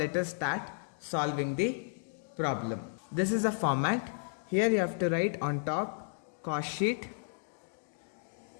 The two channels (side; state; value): right; silent; digital silence